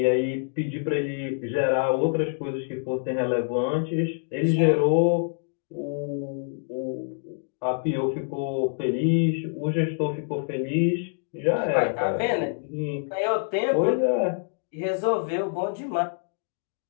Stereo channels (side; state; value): right; silent; digital silence